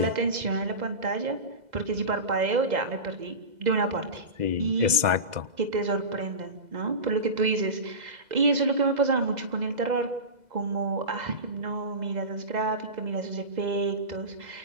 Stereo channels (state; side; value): late; left; 2.0 ms